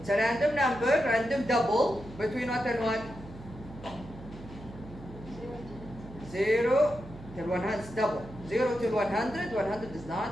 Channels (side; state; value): right; noise; hum, 16 dB below the sound